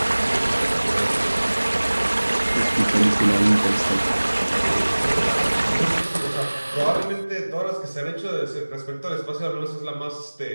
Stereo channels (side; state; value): both; inverted; correlation -1.00